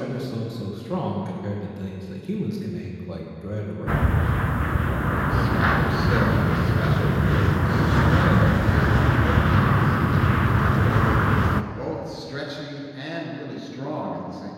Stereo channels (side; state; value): both; identical; correlation 1.00